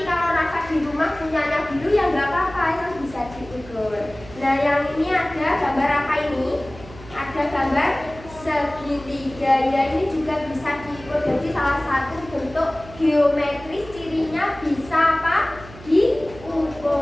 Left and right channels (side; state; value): right; noise; hum, 18 dB below the sound